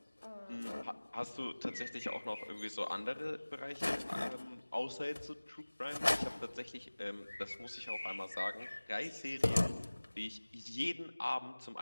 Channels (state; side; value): inverted; both; correlation -1.00